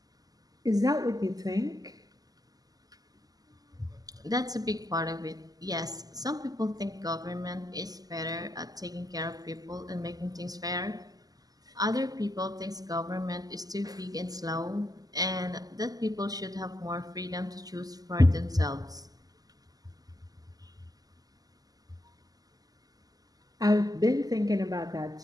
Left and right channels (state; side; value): late; left; 0.18 ms